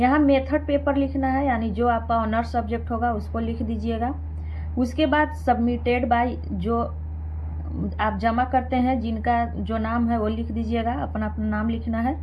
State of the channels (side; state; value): both; identical; correlation 1.00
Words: मेथड पेपर लिखना है, यानी जो आपका ऑनर्स सब्जेक्ट होगा उसको लिख दीजिएगा। उसके बाद सबमिटेड बाय, जो आप जमा करते हैं, जिनका जो नाम है वो लिख दीजिएगा। अपना अपना नाम लिखना है।